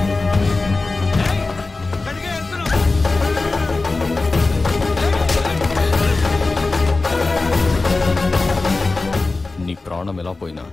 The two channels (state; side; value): quieter; right; 3.5 dB